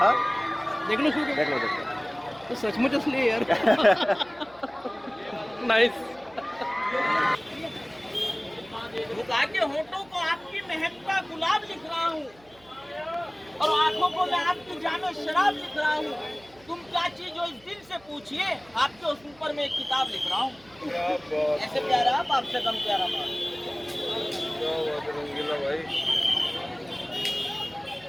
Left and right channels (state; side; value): noise; right; hum, 27 dB below the sound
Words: देख लो देख लो देख लो। तो सचमुच असली है यार। नाइस। झुका के होठों को आपकी महकता गुलाब लिख रहा हूँ और आंखों को मैं आपकी जानो शराब लिख रहा हूँ। तुम क्या चीज हो इस दिल से पूछिए, आपके उस ऊपर में एक किताब लिख रहा हूँ। ऐसे प्यारा आप, आपसे कम प्यारा बाप।